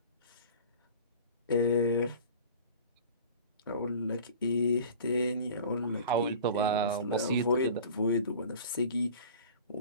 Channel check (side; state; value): both; inverted; correlation -0.42